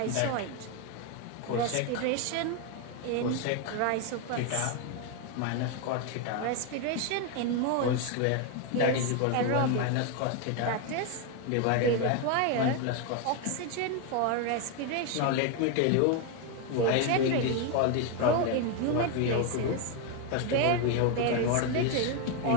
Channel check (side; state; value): both; different; correlation 0.02